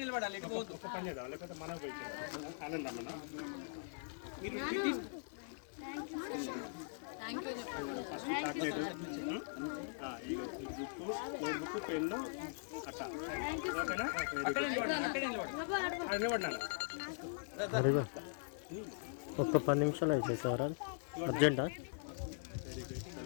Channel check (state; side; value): silent; right; 51 dB below the other